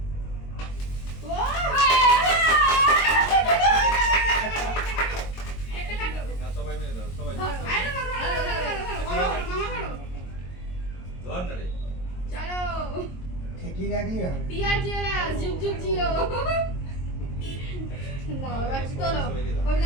চলো ঠিকই রাখলি হবে। টিআর জুয়েলার্স যুগ যুগ জিও। না বাবা চলো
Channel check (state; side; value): late; right; 22 ms